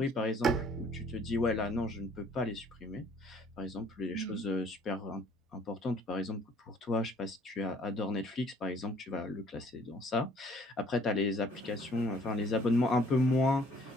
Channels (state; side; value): normal; both; correlation 0.58